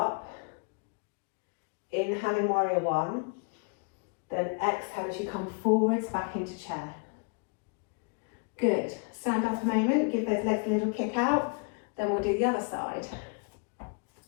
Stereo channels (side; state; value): right; quieter; 35.1 dB